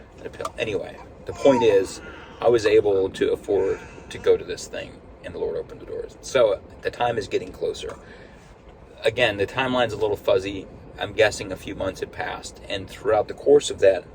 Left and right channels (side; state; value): both; identical; correlation 1.00